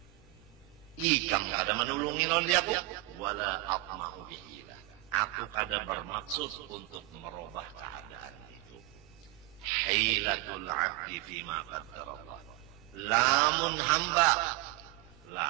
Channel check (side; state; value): left; quieter; 19.4 dB